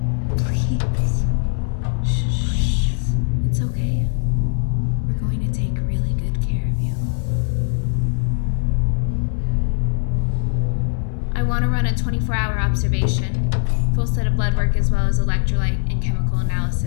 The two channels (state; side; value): silent; right; digital silence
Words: Please. Shh. It's okay. We're going to take really good care of you. I want to run a 24-hour observation, full set of blood work as well as electrolyte and chemical